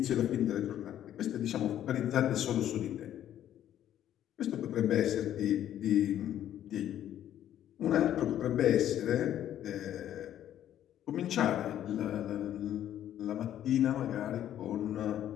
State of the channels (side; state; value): right; quieter; 11.3 dB